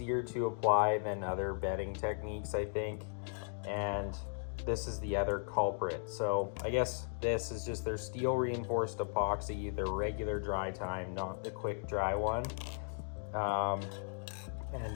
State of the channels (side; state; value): right; silent; digital silence